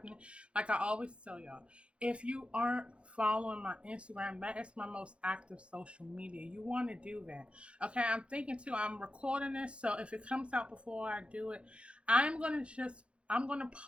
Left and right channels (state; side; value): late; left; 0.059 ms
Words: Like I always tell y'all, if you aren't following my Instagram, that is my most active social media. You want to do that, okay? I'm thinking too. I'm recording this, so if it comes out before I do it, I'm gonna